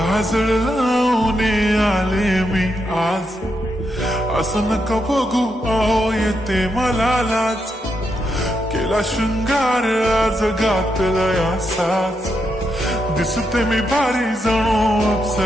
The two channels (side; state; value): both; normal; correlation 0.82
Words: लावून आले मी आज, असं नका बघू अहो येते मला लाज. केला शृंगार आज घातलाय असाच, दिसते मी भारी जणू